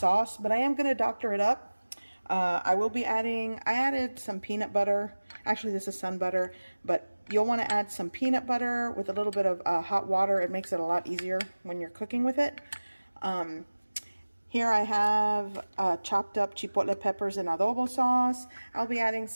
but I am going to doctor it up. I will be adding, I added some peanut butter. Actually, this is sun butter, but you'll want to add some peanut butter with a little bit of hot water. It makes it a lot easier when you're cooking with it. Here I have chopped up chipotle peppers and adobo sauce. I'll be adding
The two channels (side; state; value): both; inverted; correlation -1.00